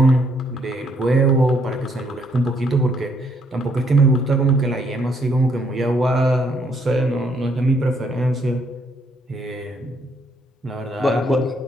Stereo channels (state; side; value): normal; both; correlation 0.70